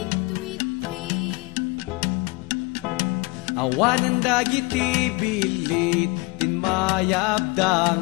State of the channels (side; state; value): right; quieter; 25.4 dB